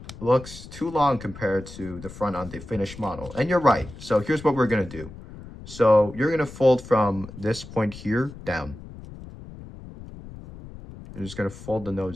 looks too long compared to the front on the finished model. And you're right. So here's what we're going to do. So you're going to fold from this point here down. You're just going to fold the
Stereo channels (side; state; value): left; noise; rumble, 15 dB below the sound